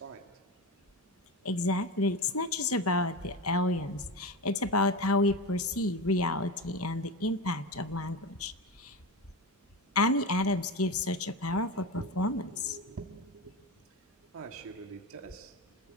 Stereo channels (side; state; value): both; normal; correlation 0.22